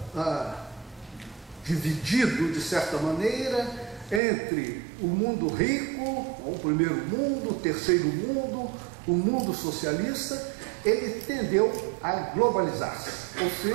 dividido, de certa maneira, entre o mundo rico, o primeiro mundo, o terceiro mundo, o mundo socialista, ele tendeu a globalizar-se, ou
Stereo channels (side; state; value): left; drops out; at 4.2 s